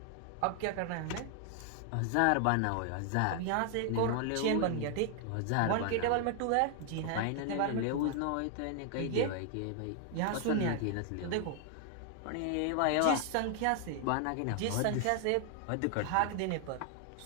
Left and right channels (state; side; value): different; both; correlation 0.00